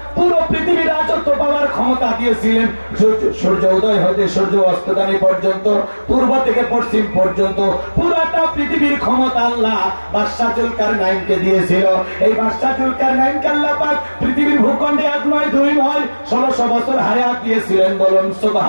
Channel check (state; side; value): inverted; both; correlation -1.00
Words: পুরো পৃথিবীর রাজত্ব পাওয়ার ক্ষমতা দিয়েছিলেন। সূর্য উদয় হতে সূর্য অস্তগামী পর্যন্ত, পূর্ব থেকে পশ্চিম পর্যন্ত পুরোটা পৃথিবীর ক্ষমতা আল্লাহ বাদশা জুলকারনাইনকে দিয়েছিল। এই বাদশা জুলকারনাইনকে আল্লাহ পাক পৃথিবীর ভূখণ্ডে 1 নয় 2 নয় 1600 বছর হায়াত দিয়েছিলেন। বলুন